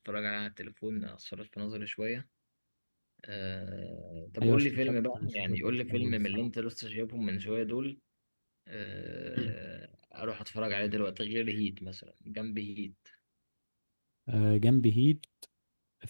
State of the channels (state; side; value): inverted; both; correlation -1.00